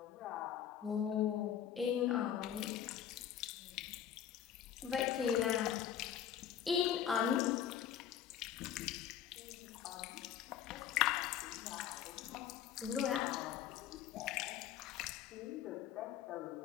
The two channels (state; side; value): quieter; right; 9.8 dB